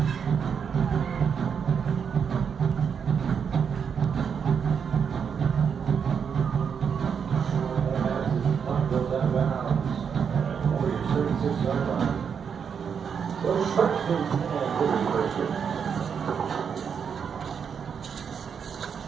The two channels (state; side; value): quieter; left; 6.9 dB